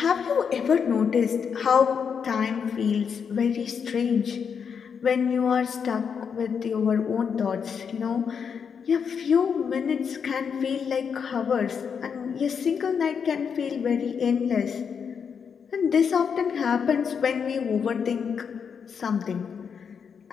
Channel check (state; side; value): quieter; right; 6.7 dB